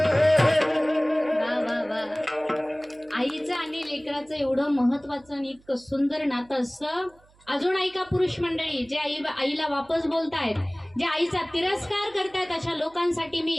आईचं आणि लेकराचं एवढं महत्वाचं आणि इतकं सुंदर नातं असतं. अजून ऐका पुरुष मंडळी, जे आईला वापस बोलतायत, जे आईचा तिरस्कार करतायत, अशा लोकांसाठी मी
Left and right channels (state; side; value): noise; right; hum, 30 dB below the sound